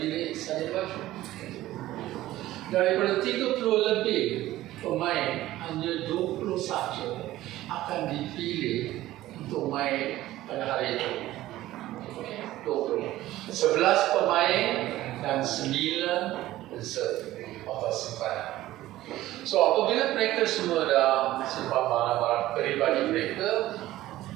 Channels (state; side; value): quieter; left; 15.5 dB